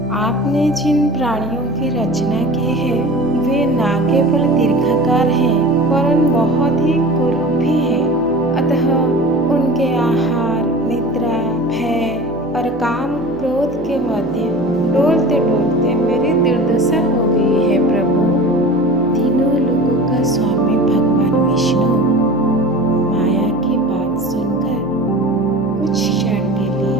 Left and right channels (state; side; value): noise; left; hum, 19 dB below the sound